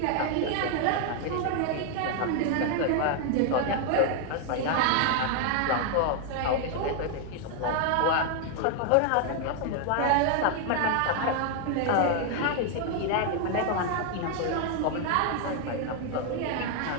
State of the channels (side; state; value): both; different; correlation 0.00